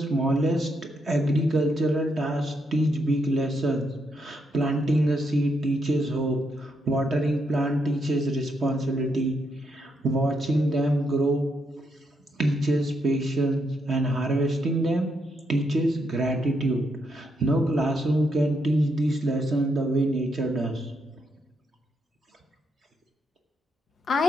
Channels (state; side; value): normal; both; correlation 0.79